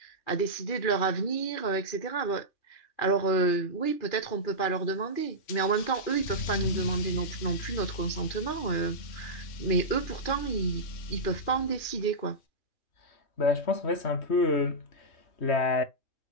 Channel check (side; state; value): right; late; 2.4 ms